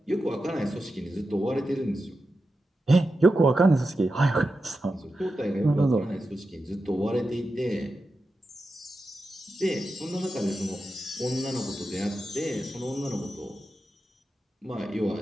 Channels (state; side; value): normal; both; correlation 0.90